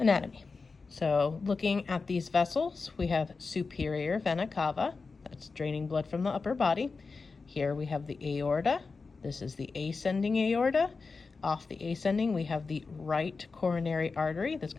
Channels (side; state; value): right; quieter; 4.4 dB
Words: So looking at these vessels, we have superior vena cava, that's draining blood from the upper body. Here we have the aorta. This is the ascending aorta. Off the ascending, we have the right coronary artery that's